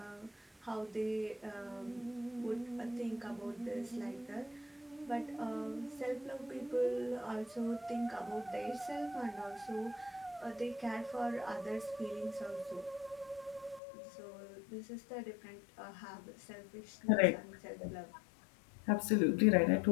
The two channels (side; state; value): right; drops out; at 13.8 s